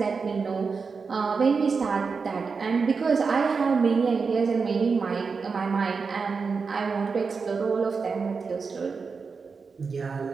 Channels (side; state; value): left; quieter; 5.0 dB